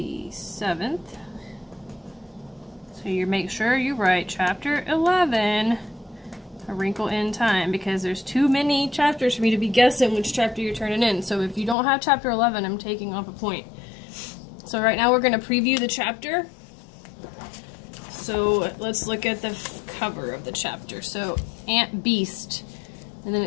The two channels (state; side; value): drops out; right; at 11.8 s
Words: 7th. So you make sure you write chapter 11, A Wrinkle in Time, because there's too many chapters for me to be guessing which chapter you're turning in. So if you don't have chapter 11, I'm taking off a point. So right now we're going to preview the chapter. So let's look at the cover of the chapter. So Ant Beast. And then